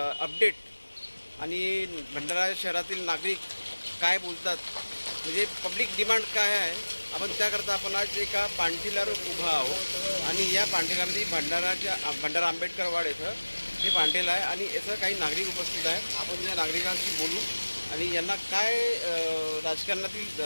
आणि भंडारा शहरातील नागरिक काय बोलतात, म्हणजे पब्लिक डिमांड काय आहे, आपण त्याकरता आपण आज एका पांठीलावर उभा आहोत. आणि या पांठीलामध्ये भंडारा आंबेडकर वाड येथं हे पांठीला आहे आणि याचं काही नागरिक उपस्थित आहेत. आपण या नागरिकांशी बोलू आणि यांना काय राजकारणातील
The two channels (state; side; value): inverted; both; correlation -1.00